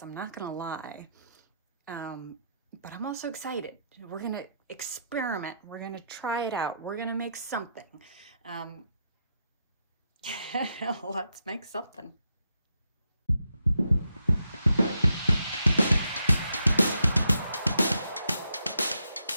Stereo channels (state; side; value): inverted; both; correlation -0.81